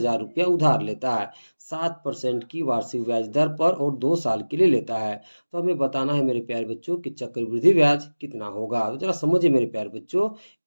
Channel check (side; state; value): both; inverted; correlation -1.00